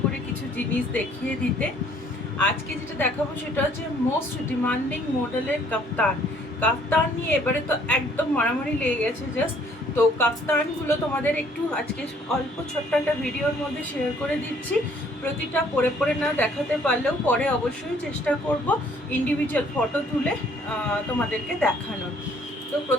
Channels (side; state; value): both; normal; correlation 0.61